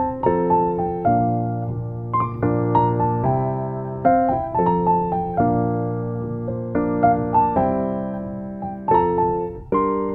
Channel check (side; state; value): both; identical; correlation 1.00